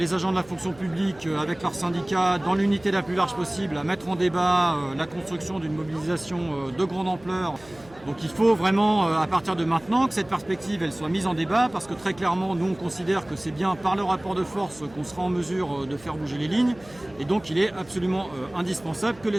agents de la fonction publique avec leurs syndicats, dans l'unité la plus large possible, à mettre en débat la construction d'une mobilisation de grande ampleur. Donc il faut vraiment, à partir de maintenant, que cette perspective elle soit mise en débat, parce que très clairement, nous on considère que c'est bien par le rapport de force qu'on sera en mesure de faire bouger les lignes. Et donc il est absolument indispensable que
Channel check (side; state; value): right; noise; hum, 23 dB below the sound